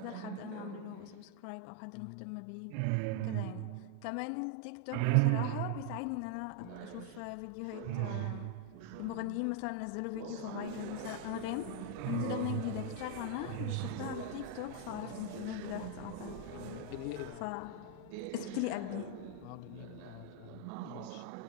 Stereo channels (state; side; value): different; both; correlation 0.00